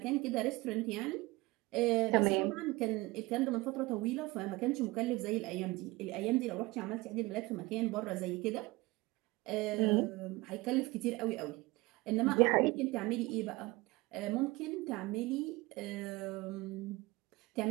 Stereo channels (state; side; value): quieter; left; 21.7 dB